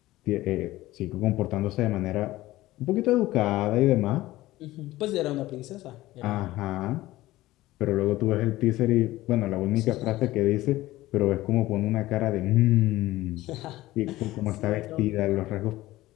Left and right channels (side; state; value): right; quieter; 17.0 dB